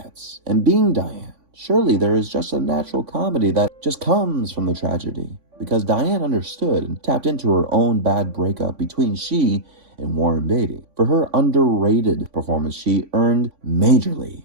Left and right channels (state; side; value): late; left; 3.5 ms